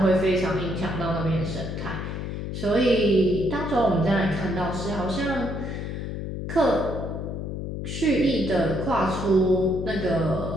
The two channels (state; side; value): noise; left; hum, 5 dB below the sound